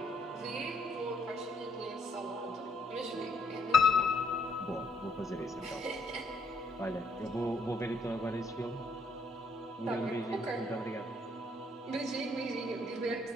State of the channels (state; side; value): normal; both; correlation 0.70